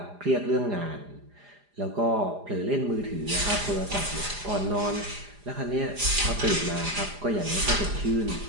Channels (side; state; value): left; late; 4.9 ms